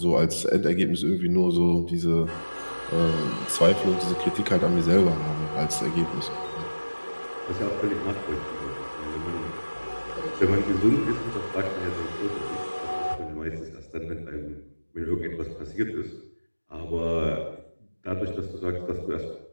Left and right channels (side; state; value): both; inverted; correlation -1.00